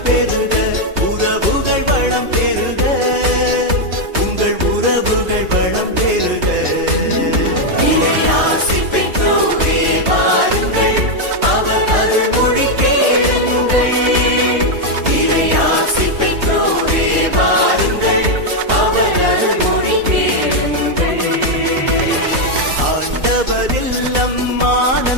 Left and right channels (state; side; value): late; left; 3.2 ms